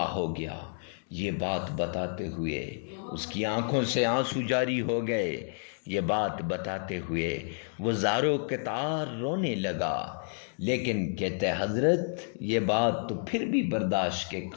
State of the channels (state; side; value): silent; right; digital silence